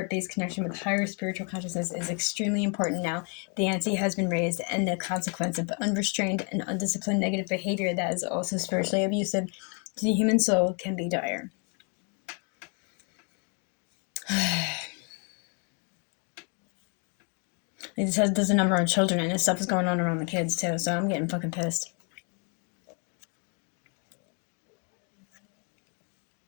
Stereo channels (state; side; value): quieter; right; 38.0 dB